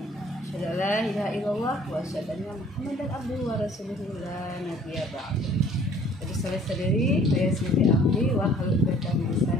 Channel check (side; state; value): both; normal; correlation 0.54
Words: Asyhadu an la ilaha illallah wa asyhadu anna Muhammadan abduhu wa rasuluhu la nabiyya ba'du. Jadi salih sadari wa yassir amri wa hlul 'uqdatam min